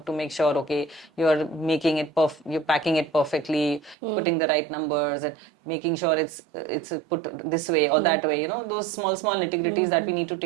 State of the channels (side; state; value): left; drops out; at 4.0 s